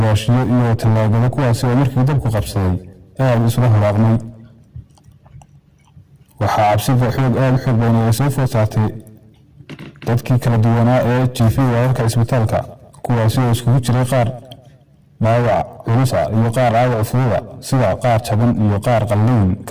iyo talaagada kuwaasi oo markii dabku qabsaday aad isla haraaqmay waxaa cabsida aad u xoog badan ay soo food saartay dadkii kala duwanaa ee jiifay wararka isbitaalka kuwaasi oo iskugu jiray qaar dhaawac culus ah iyo qaar dhaawac fudud ah sida qaar jaban iyo qaar qalliin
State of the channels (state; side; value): identical; both; correlation 1.00